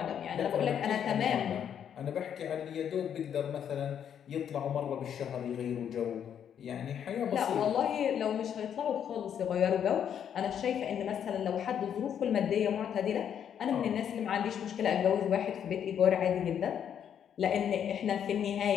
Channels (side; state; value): right; quieter; 8.8 dB